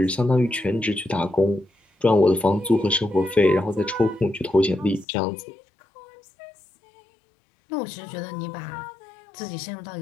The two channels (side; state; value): right; drops out; at 5.1 s